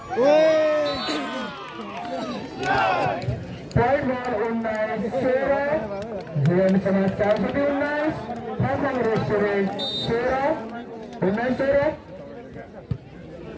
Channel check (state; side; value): identical; both; correlation 1.00